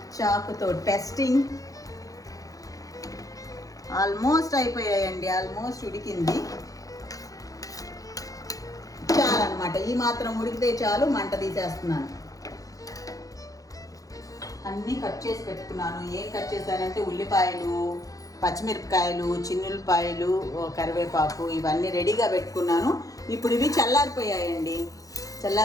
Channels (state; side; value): late; right; 0.17 ms